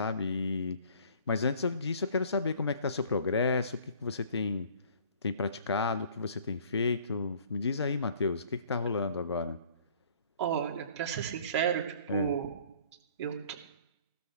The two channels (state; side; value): inverted; both; correlation -0.54